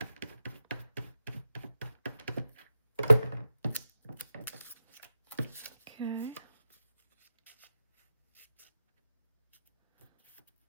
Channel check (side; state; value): both; inverted; correlation -0.89